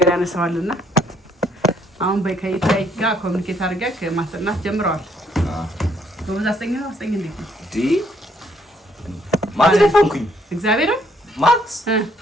ያነሳዋልና አሁን በከይታይ ጋር ኮሙኒኬት አድርገህ ማስጠናት ጀምረዋል። ጎበዝ አስጠኝ እንዴት ነው? ማትደፈንኩኝ እግዚአብሔር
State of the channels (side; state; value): both; normal; correlation 0.68